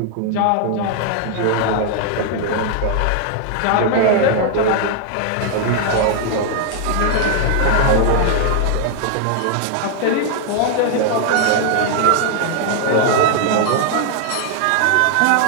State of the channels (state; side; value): different; both; correlation 0.00